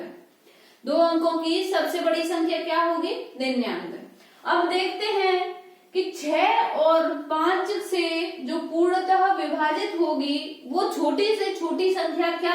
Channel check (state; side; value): identical; both; correlation 1.00